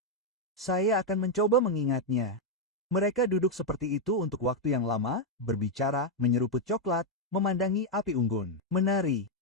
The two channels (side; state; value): both; normal; correlation 0.01